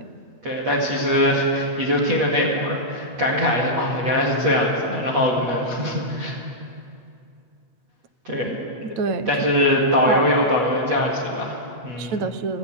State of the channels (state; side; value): late; left; 8.2 ms